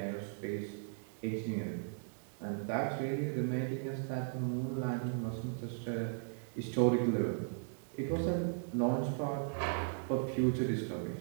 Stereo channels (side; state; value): left; silent; digital silence